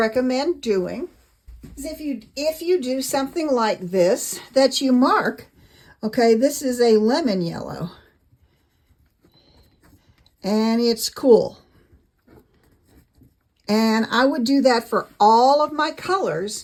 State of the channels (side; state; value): both; identical; correlation 1.00